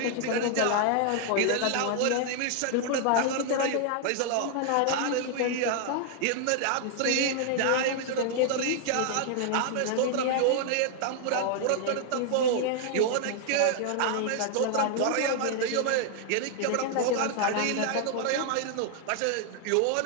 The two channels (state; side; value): different; both; correlation 0.00